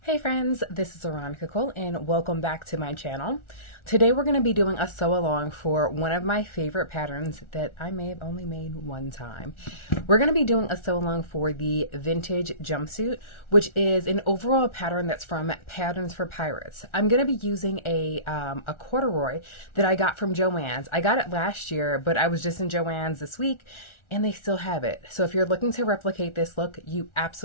Hey friends, this is Veronica Cole and welcome back to my channel. Today we're going to be doing a sew along for one of my favorite patterns that I may have only made one time. We're going to be doing a sew along for the vintage jumpsuit, which is an overall pattern that's from Patterns for Pirates. I'm going to be using a corduroy that I got from Joann's. I got it last year, but I was just in Joann's this week and they still have it. So if you're looking to replicate this look, you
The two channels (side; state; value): right; late; 1.4 ms